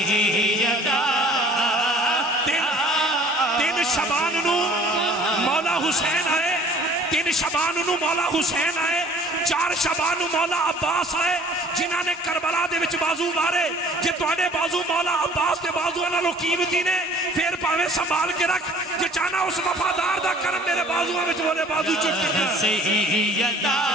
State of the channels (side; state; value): both; normal; correlation 0.52